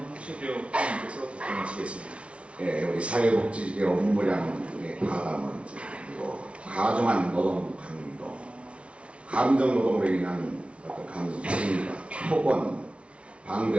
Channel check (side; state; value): left; late; 0.061 ms